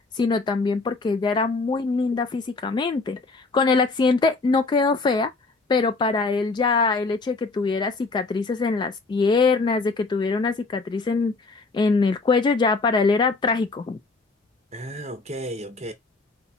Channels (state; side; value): quieter; right; 3.8 dB